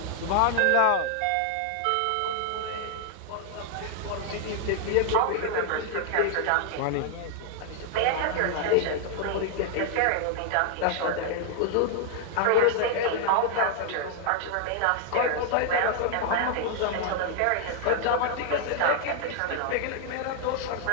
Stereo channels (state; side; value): different; both; correlation 0.00